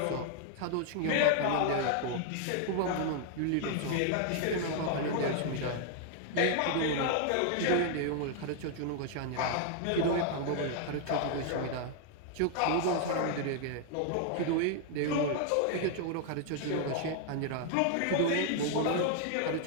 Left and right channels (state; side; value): different; both; correlation 0.00